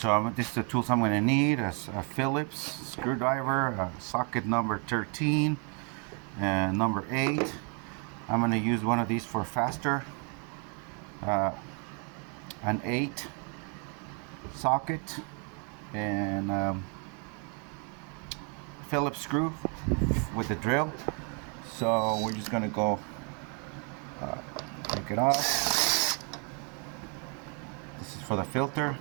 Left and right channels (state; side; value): quieter; left; 37.7 dB